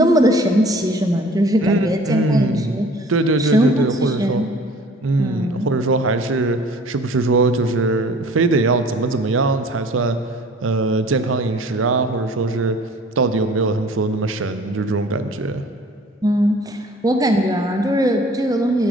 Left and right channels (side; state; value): both; normal; correlation 0.49